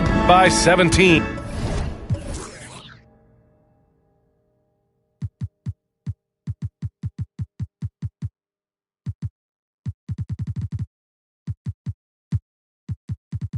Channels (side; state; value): both; identical; correlation 1.00